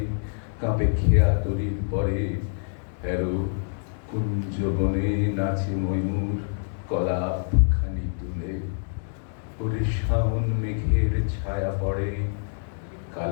কাঁপে খেয়া তরির পরে। হেরো কুঞ্জ বনে নাচে ময়ূর কলাপ খানি তুলে। ওরে শাওন মেঘের ছায়া পড়ে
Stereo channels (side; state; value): right; silent; digital silence